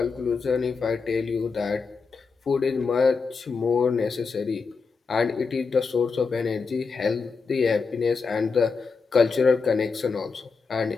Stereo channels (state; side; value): quieter; right; 4.8 dB